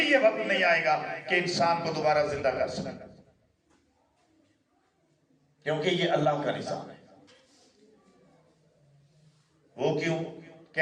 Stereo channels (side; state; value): both; identical; correlation 1.00